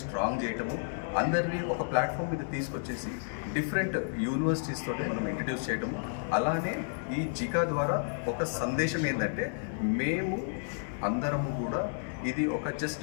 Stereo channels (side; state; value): right; silent; digital silence